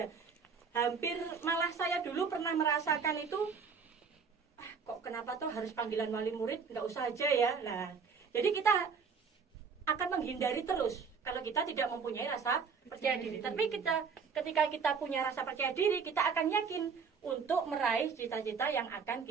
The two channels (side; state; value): left; quieter; 5.7 dB